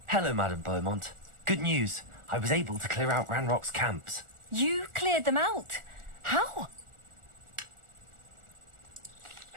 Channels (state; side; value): late; left; 1.4 ms